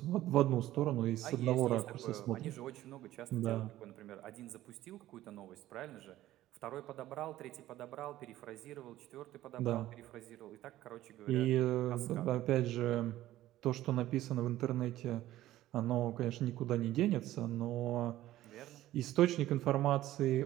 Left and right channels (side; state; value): left; quieter; 14.7 dB